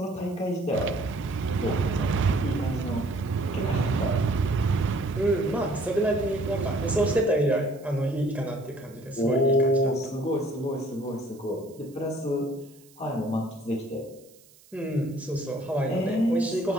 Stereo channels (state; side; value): noise; right; hiss, 27 dB below the sound